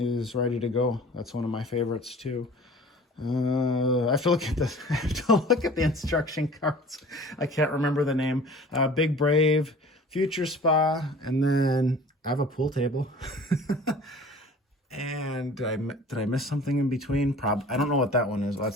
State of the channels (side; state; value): both; normal; correlation 0.45